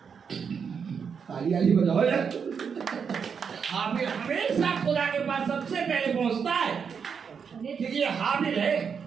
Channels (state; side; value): quieter; left; 6.5 dB